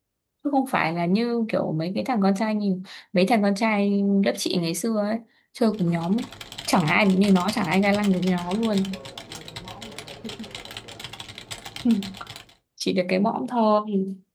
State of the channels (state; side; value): identical; both; correlation 1.00